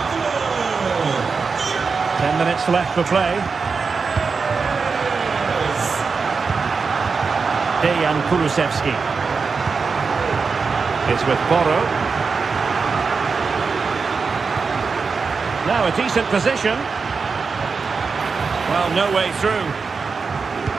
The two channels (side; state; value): left; quieter; 4.9 dB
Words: 10 minutes left for play. Dejan Kulusevski. It's with Porro. Now a decent position. Well, no way through.